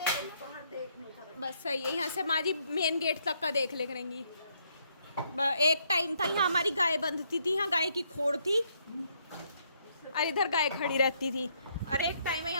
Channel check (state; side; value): inverted; both; correlation -0.72